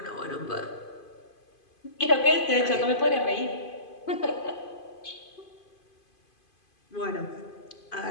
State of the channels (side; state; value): right; late; 2.5 ms